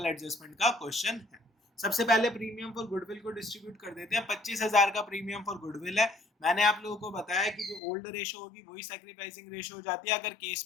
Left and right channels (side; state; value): right; drops out; at 7.8 s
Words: एडजस्टमेंट का क्वेश्चन है। सबसे पहले प्रीमियम फॉर गुडविल को डिस्ट्रीब्यूट कर देते हैं। 25,000 का प्रीमियम फॉर गुडविल है। मैंने आप लोगों को बताया कि जो ओल्ड रेशो होगी वही सैक्रिफाइसिंग रेशो हो जाती है अगर केस